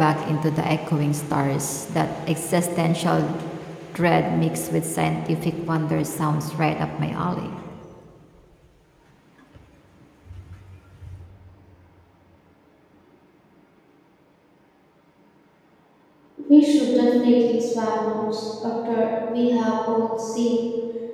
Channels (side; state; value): both; identical; correlation 1.00